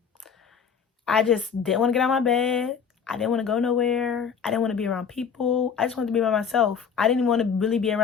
I just didn't want to get out of my bed. I didn't want to go nowhere. I didn't want to be around people. I just wanted to be by myself. I didn't even want to really be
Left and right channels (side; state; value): right; quieter; 6.7 dB